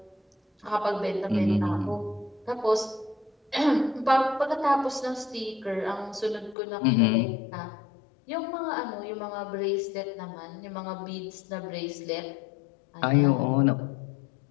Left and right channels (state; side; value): drops out; right; at 6.6 s